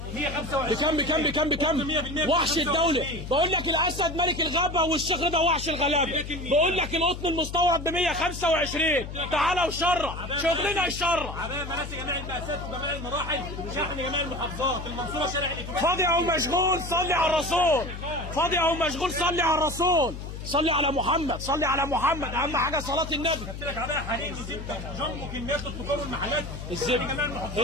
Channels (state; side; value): noise; left; hum, 9 dB below the sound